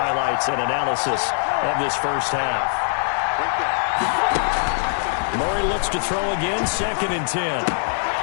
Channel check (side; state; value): right; silent; 64 dB below the other